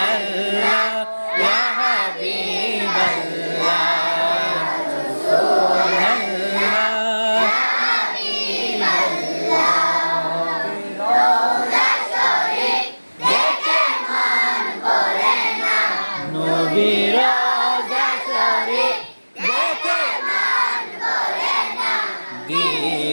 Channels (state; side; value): inverted; both; correlation -1.00